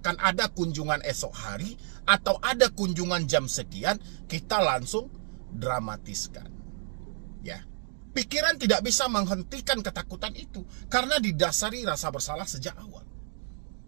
ada kunjungan esok hari atau ada kunjungan jam sekian, kita langsung dramatiskan. Ya. Pikiran tidak bisa menghentikan ketakutan itu karena didasari rasa bersalah sejak awal.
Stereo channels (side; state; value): left; silent; digital silence